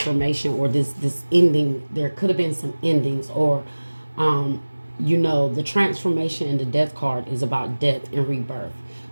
or this ending, there could have been some endings, or you know, the transformation in the death card is about death and rebirth,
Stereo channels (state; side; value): inverted; both; correlation -1.00